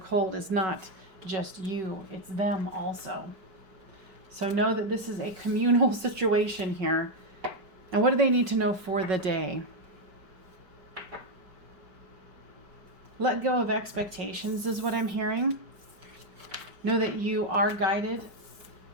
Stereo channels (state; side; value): late; left; 5.4 ms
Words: is not just you, it's them also. So know that this is a communal situation here. And what do they need to know for the day? Let go of expectations is what I'm hearing. Know that you are guided